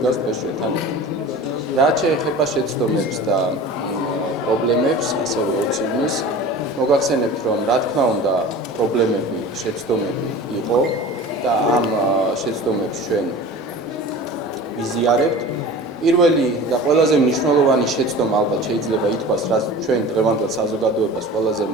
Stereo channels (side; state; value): both; normal; correlation 0.38